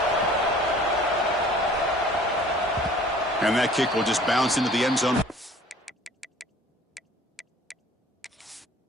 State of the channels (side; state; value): both; normal; correlation 0.50